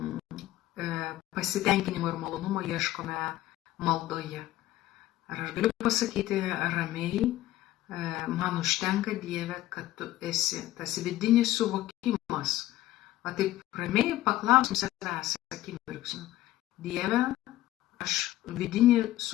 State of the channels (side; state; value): right; quieter; 15.1 dB